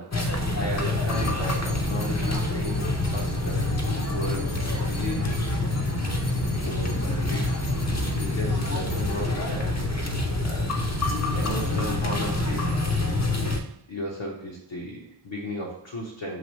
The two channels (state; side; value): normal; both; correlation 0.53